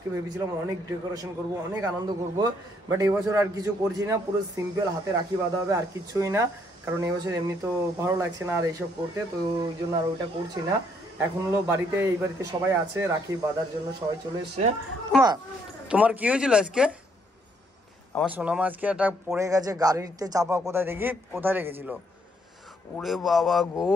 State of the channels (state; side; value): normal; both; correlation 0.70